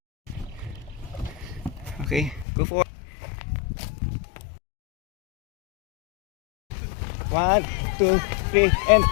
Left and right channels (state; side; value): drops out; right; at 2.5 s